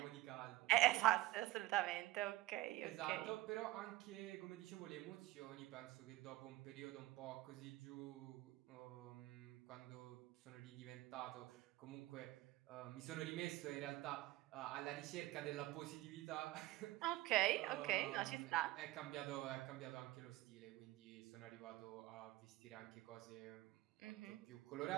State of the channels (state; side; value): quieter; left; 17.0 dB